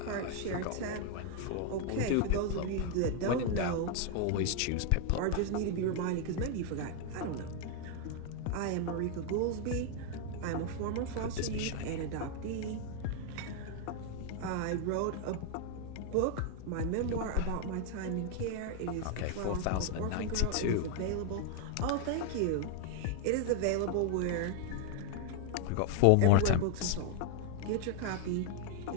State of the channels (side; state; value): both; different; correlation 0.00